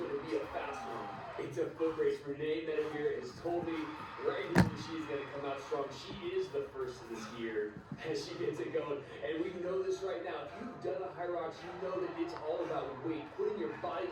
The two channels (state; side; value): identical; both; correlation 1.00